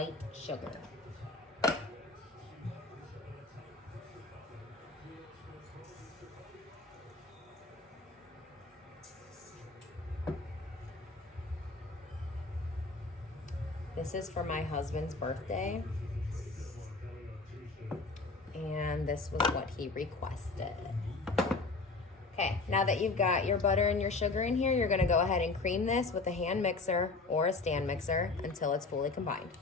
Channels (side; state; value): right; quieter; 3.7 dB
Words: sugar. This is for my husband's birthday, and this was what he requested. Okay, now that you've got your butter and your sugar in here, you're gonna go ahead and cream this with a hand mixer or a stand mixer until it's fully combined.